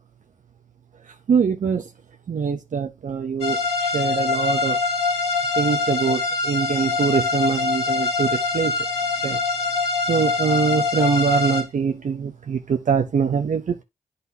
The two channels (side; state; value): both; normal; correlation 0.30